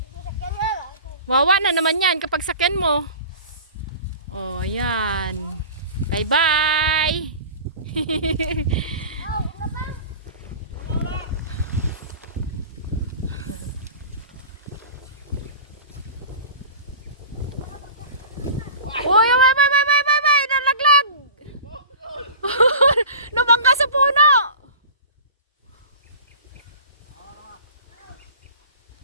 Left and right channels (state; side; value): inverted; both; correlation -0.37